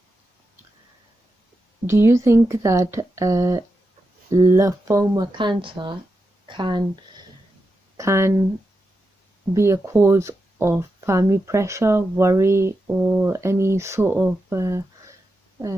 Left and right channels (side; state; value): both; normal; correlation 0.88